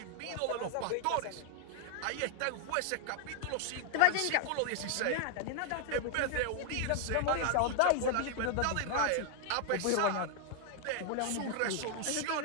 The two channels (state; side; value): different; both; correlation 0.00